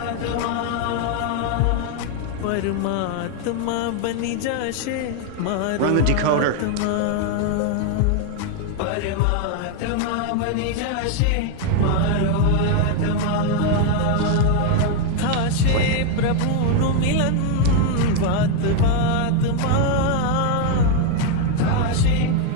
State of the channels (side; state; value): both; different; correlation 0.01